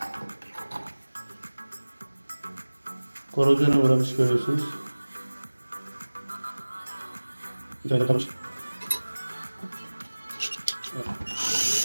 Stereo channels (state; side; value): inverted; both; correlation -1.00